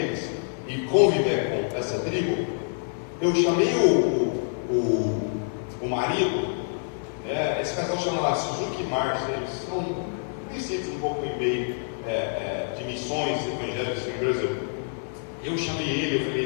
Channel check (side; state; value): right; silent; digital silence